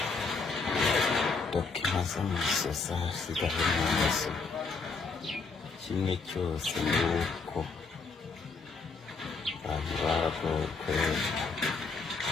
dokima z'amasosa zigahe mu maso kimwe cyose ni uko abantu baragowe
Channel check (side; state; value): right; quieter; 4.3 dB